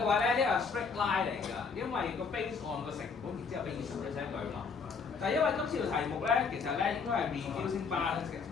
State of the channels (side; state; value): right; quieter; 5.3 dB